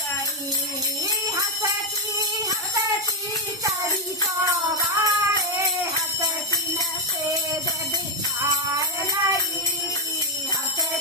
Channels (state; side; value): normal; both; correlation 0.03